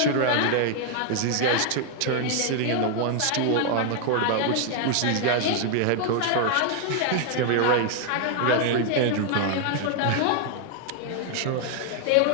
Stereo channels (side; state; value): both; different; correlation 0.00